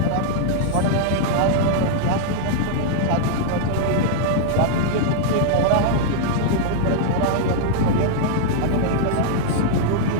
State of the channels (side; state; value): both; different; correlation -0.01